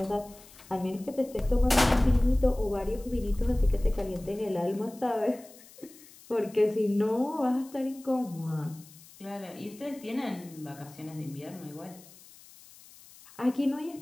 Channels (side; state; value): left; noise; hiss, 22 dB below the sound